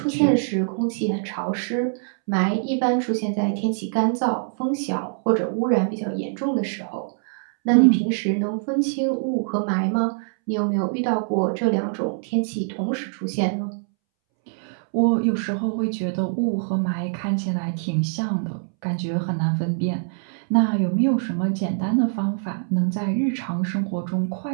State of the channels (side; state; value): left; silent; 63 dB below the other